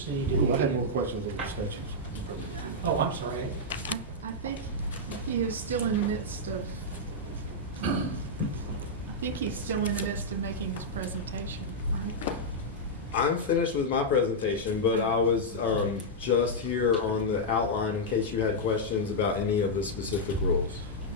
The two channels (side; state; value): both; normal; correlation -0.06